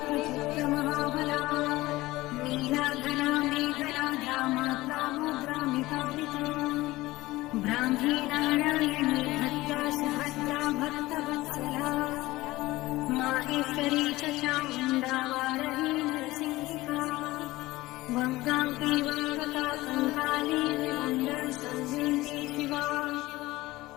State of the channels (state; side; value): quieter; right; 18.8 dB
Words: नीलाघना मेघना ध्यामात्रा ब्राह्मी नारायणी भक्ता सुभद्रा भक्तवत्सला माहेश्वरी च चामुण्डा वारही नरसिंहिका वङ्गाङ्गी वङ्गका कङ्काली विमण्डलसंवेदी शिवा